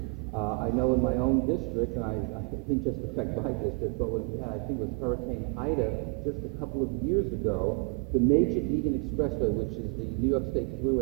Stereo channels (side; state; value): left; quieter; 34.6 dB